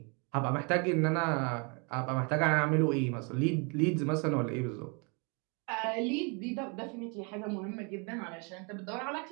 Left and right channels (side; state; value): left; quieter; 34.0 dB